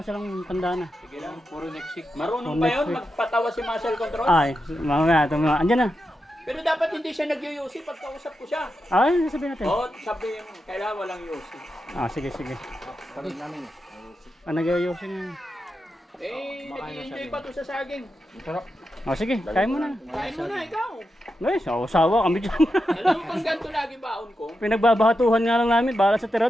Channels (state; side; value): normal; both; correlation 0.88